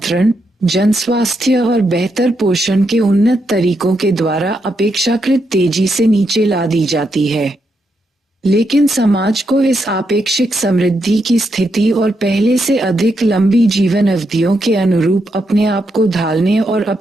जनस्वास्थ्य और बेहतर पोषण के उन्नत तरीकों के द्वारा अपेक्षाकृत तेजी से नीचे ला दी जाती है। लेकिन समाज को इस आपेक्षिक समृद्धि की स्थिति और पहले से अधिक लंबी जीवन अवधियों के अनुरूप अपने आप को ढालने और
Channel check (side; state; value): both; normal; correlation 0.81